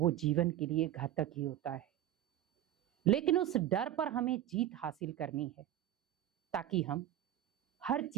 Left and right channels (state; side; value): quieter; left; 12.2 dB